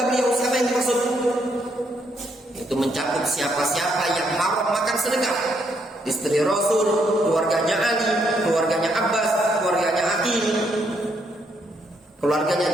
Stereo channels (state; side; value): normal; both; correlation 0.74